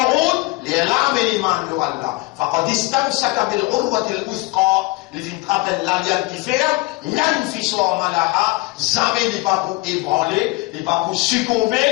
les rames et l'iman de Allah. Faqad istamsaka bil urwati al-wuthqa. Les filles rappellent l'alliance qui fait, l'anfiswa malaha, jamais n'est pas pour ébranler, n'est pas pour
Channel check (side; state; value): right; quieter; 23.5 dB